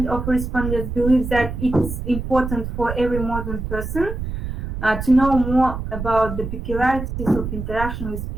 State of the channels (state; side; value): noise; right; rumble, 5 dB below the sound